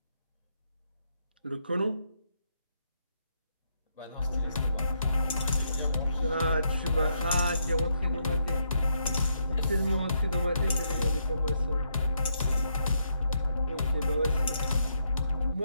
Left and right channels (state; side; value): inverted; both; correlation -0.77